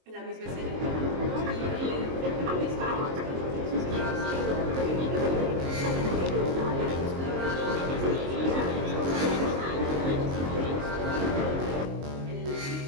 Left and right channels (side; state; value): left; late; 22 ms